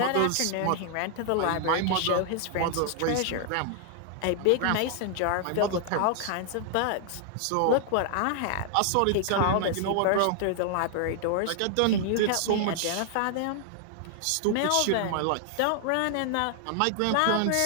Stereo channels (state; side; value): different; both; correlation 0.00